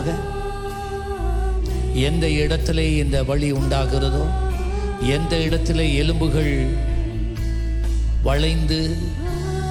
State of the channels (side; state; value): both; identical; correlation 1.00